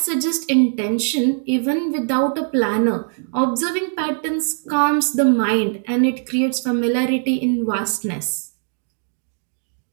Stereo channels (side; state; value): left; silent; digital silence